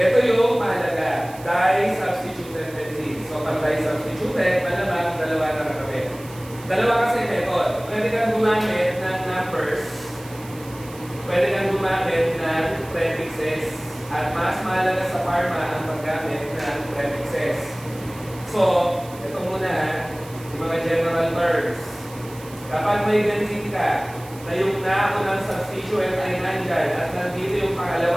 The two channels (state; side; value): noise; right; hiss, 20 dB below the sound